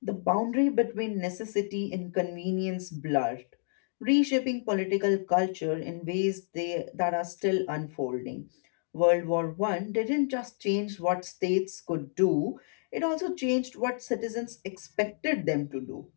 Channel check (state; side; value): silent; right; digital silence